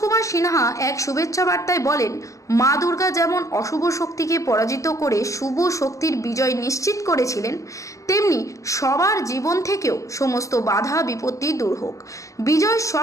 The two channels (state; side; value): late; right; 0.15 ms